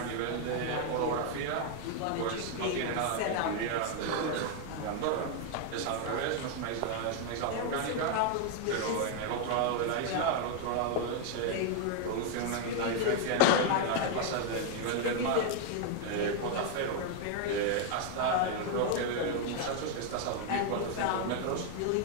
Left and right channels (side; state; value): both; different; correlation 0.00